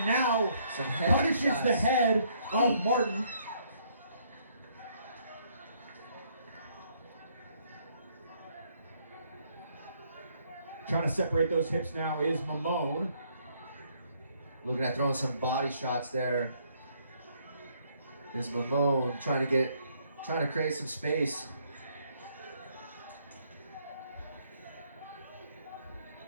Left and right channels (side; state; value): both; inverted; correlation -0.68